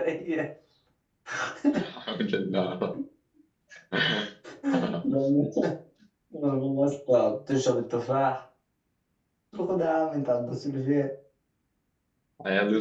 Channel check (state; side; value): identical; both; correlation 1.00